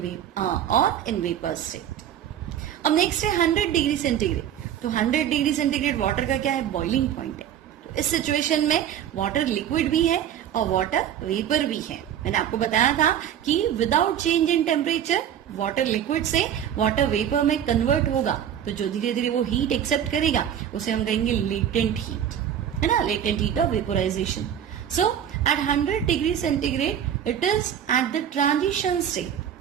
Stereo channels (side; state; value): left; quieter; 9.7 dB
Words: वेपर स्टेट। अब नेक्स्ट है 100 डिग्री सेंटीग्रेड। तो 100 डिग्री सेंटीग्रेड वाटर का क्या है, बॉइलिंग पॉइंट है। तो इस सिचुएशन में वाटर लिक्विड भी है और वाटर वेपर भी है। मैंने आपको बताया था कि without change in temperature water liquid से वाटर वेपर में कन्वर्ट होगा, तो जो धीरे धीरे वो हीट एक्सेप्ट करेगा उसे हम कहेंगे लेटेंट हीट, है ना, latent heat of vaporisation. So at 100 degree centigrade it is at the transition